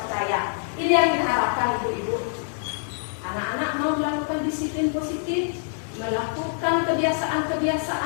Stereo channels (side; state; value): right; silent; digital silence